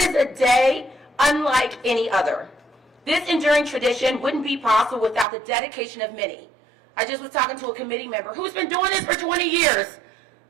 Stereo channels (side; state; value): left; drops out; at 5.2 s